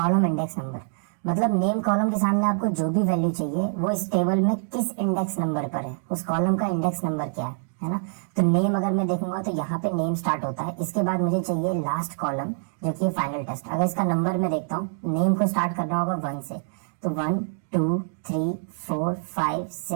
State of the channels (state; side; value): silent; left; digital silence